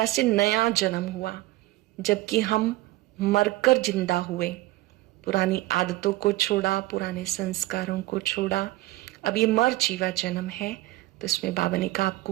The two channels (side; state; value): left; quieter; 18.2 dB